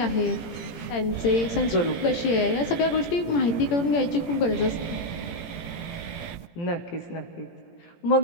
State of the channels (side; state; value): right; late; 17 ms